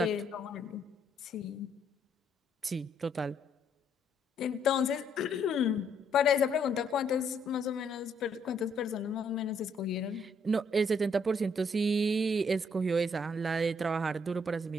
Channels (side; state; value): both; normal; correlation 0.70